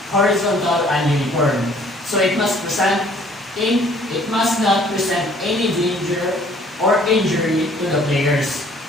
horizontal, and uniform. So it must not present any danger or injury to the players.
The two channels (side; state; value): both; normal; correlation 0.57